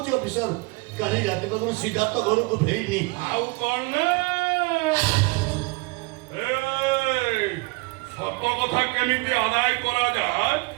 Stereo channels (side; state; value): left; quieter; 26.8 dB